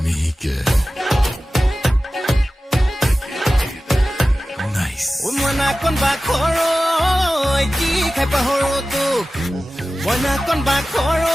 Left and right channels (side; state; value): both; normal; correlation 0.95